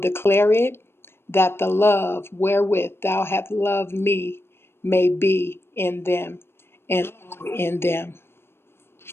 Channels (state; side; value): late; right; 0.12 ms